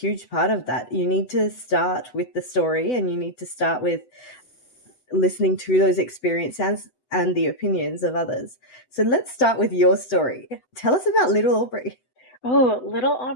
part of that. You need to start with the story and you need to start with listening to those experiences and the opinions of others. So let's start with your story. Tell us about little Aubrey. Oh, little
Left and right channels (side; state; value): right; late; 8.0 ms